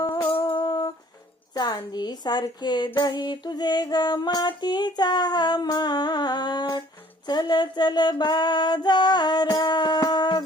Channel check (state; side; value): normal; both; correlation 0.56